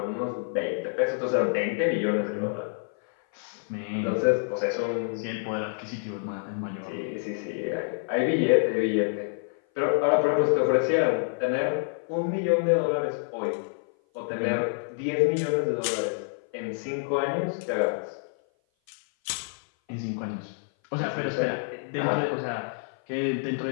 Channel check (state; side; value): silent; right; 56 dB below the other